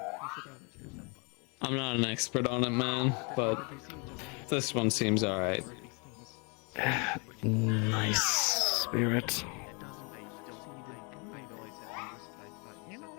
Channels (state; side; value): quieter; right; 33.0 dB